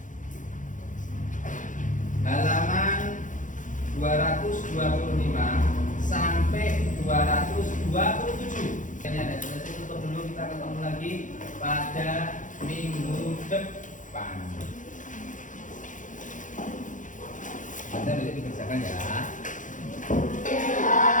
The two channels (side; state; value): right; late; 0.37 ms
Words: halaman 225 sampai 227. Ini ada selesai tutup dulu, kita ketemu lagi pada minggu depan. Anda bisa dikerjakan ya.